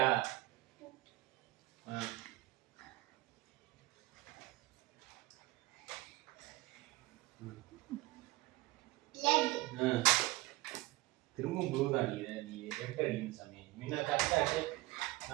திரும்ப ப்ளூ தான் அடிக்கிற நீ. ரெட் அடிக்கணும் சாமி. முன்ன கரெக்டா அடி.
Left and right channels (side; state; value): left; quieter; 19.0 dB